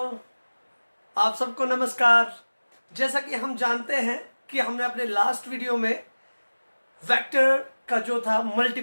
आप सबको नमस्कार। जैसा कि हम जानते हैं कि हमने अपने लास्ट वीडियो में वेक्टर का जो था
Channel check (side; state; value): both; inverted; correlation -1.00